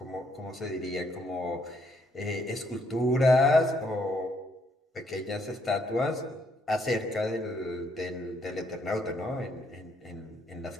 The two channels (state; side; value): normal; both; correlation 0.71